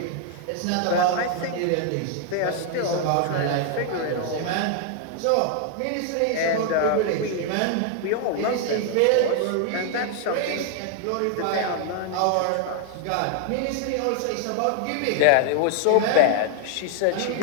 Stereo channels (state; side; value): different; both; correlation 0.00